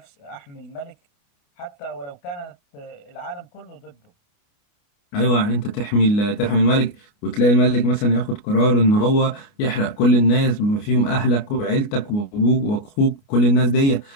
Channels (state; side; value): late; right; 29 ms